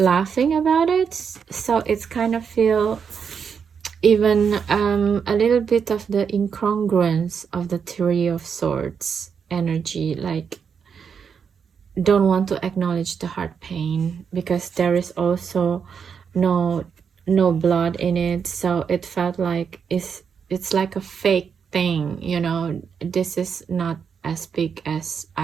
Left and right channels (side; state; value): left; quieter; 6.7 dB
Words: about it. So it's kind of feel even a little bit of the incongruence of the Three of Swords energy, like don't want to acknowledge the heart pain, because there is also no blood in it. So it felt like it's like a fake thing, you know. This is not as big as